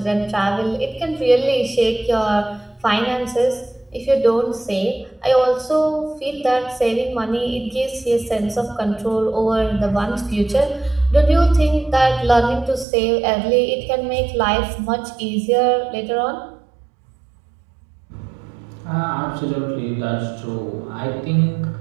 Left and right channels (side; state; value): left; drops out; at 12.9 s